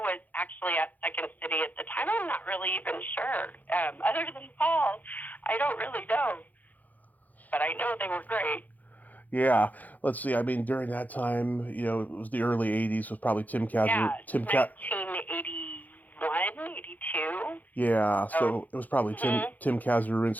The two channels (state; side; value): late; right; 0.081 ms